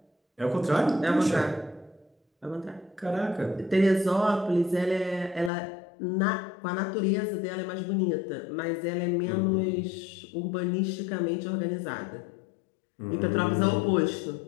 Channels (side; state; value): right; drops out; at 5.5 s